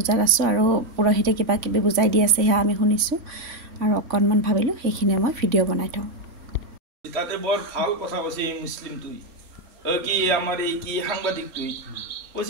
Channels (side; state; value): left; late; 4.3 ms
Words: আছো আৰু পুৰোহিতে কিবা কিবি বুজাই দি আছে হা আমি শুনিছো আৰু অকনমান ভাবিলো সেইখিনি মই ভিডিও বনাই থওঁ তাতে বৰ ভাল কথা কৈছে মুছলিম তুই কি আমাৰ এই কি সাংবাদিক তুই